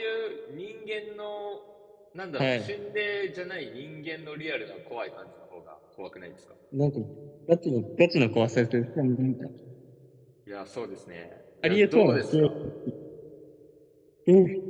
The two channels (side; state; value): both; identical; correlation 1.00